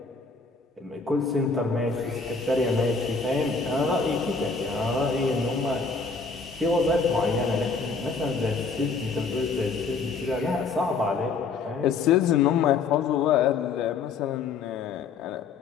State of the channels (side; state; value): right; quieter; 4.6 dB